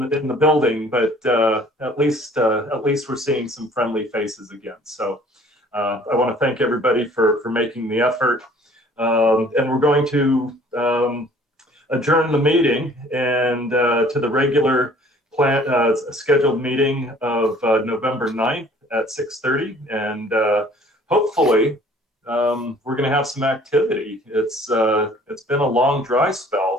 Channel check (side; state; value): both; normal; correlation 0.54